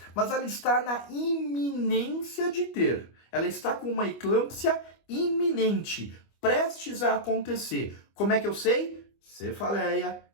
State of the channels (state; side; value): late; right; 25 ms